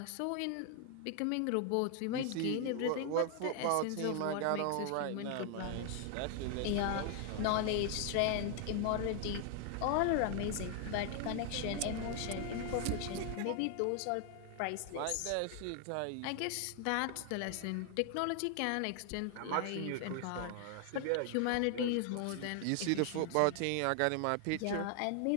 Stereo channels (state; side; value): different; both; correlation 0.00